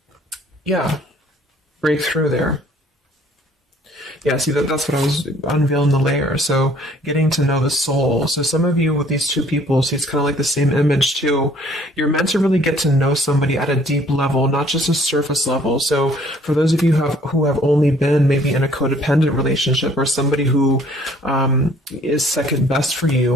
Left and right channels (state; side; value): normal; both; correlation 0.58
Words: break through there. Yeah, see, that's what I was unveiling the layer. So getting to know the soul. So some of you with these two people, see, it's kind of like the same image too. You're meant to really get to know somebody at a deep level, not just a surface level. So for those of you who have only been maybe in a codependent relationship, or somebody who is second best for